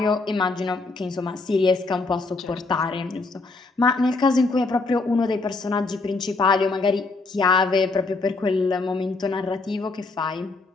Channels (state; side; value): quieter; right; 3.6 dB